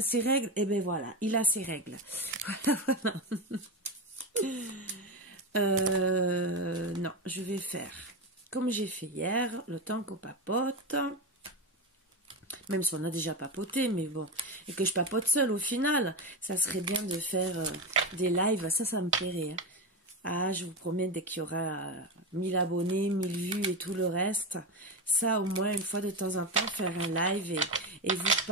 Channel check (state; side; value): normal; both; correlation 0.16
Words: règles, et ben voilà, il a ses règles. Voilà, voilà. Non, je vais faire comme j'ai fait hier, le temps qu'on papote. Même si on a déjà papoté, mais bon. Et que je papote seule au final. Ça serait bien de faire des lives, ça me plairait. Hein. Ah, je vous promets, dès qu'il y aura 1000 abonnés, 1000 vues et tout le reste, ça, au moins, une fois de temps en temps, faire un live et vous